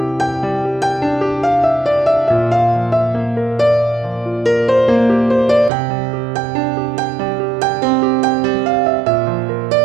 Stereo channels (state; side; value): drops out; left; at 5.7 s